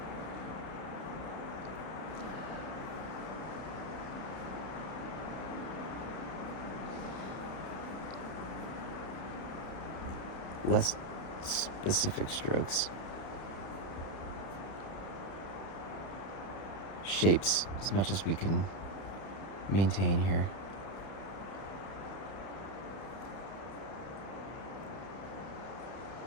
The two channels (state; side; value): late; right; 31 ms